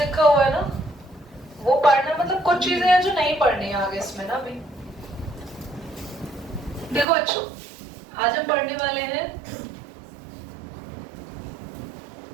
हुआ है ना, वो पढ़ना, मतलब कुछ चीजें हैं जो नहीं पढ़नी है आगे इसमें ना। अभी देखो बच्चों, आज हम पढ़ने वाले हैं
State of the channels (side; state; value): left; drops out; at 7.1 s